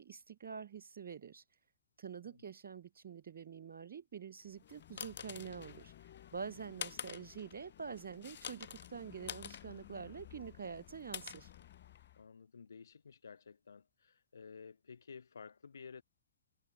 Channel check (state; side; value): inverted; both; correlation -0.53